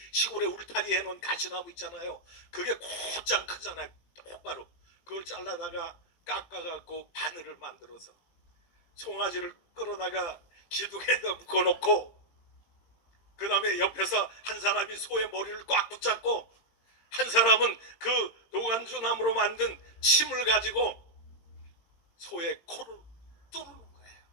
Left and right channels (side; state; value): right; late; 18 ms